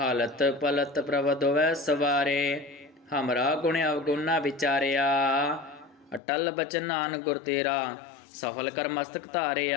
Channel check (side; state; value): right; drops out; at 6.2 s